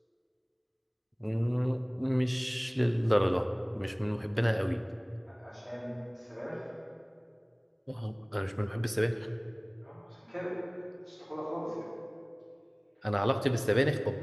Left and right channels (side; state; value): both; identical; correlation 1.00